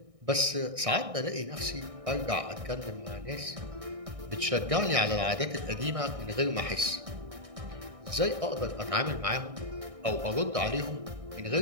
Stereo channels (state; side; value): late; left; 1.6 ms